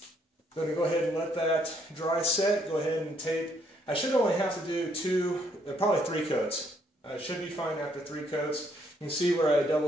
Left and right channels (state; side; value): normal; both; correlation 0.70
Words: I'm going to go ahead and let that dry set. Go ahead and tape. I should only have to do probably 3 coats. I should be fine after 3 coats. You can see where I